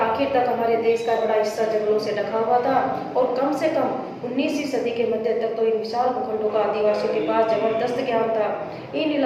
आखिर तक हमारे देश का बड़ा हिस्सा जंगलों से ढका हुआ था और कम से कम 19वीं सदी के मध्य तक तो इन विशाल भूखंडों का आदिवासियों के पास जबरदस्त ज्ञान था। इन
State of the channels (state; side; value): identical; both; correlation 1.00